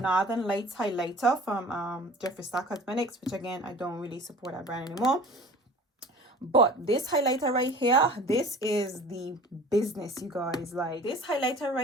Lights highlighter from Jeffree Cosmetics, which again, I don't really support that brand anymore. But this highlighter right here, this is the business, you guys. Like, this highlighter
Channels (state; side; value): normal; both; correlation 0.43